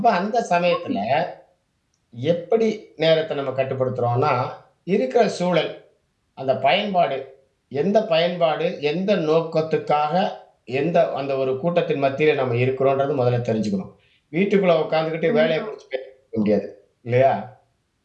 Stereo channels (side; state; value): both; identical; correlation 1.00